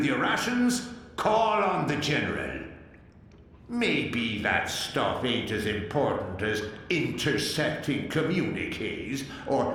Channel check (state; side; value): identical; both; correlation 1.00